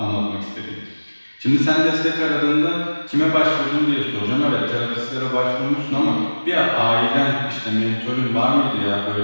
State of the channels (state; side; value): inverted; both; correlation -1.00